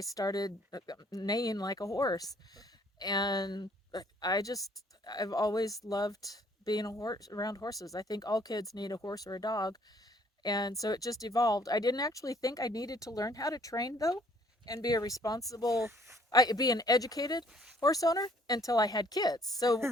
neighing like a horse. And I've always loved being around horses. I think all kids need a horse or a dog. And so it just evolved. I didn't actually think I needed to learn how to train, though, and be an educated horse owner until I had kids. So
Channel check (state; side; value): normal; both; correlation 0.61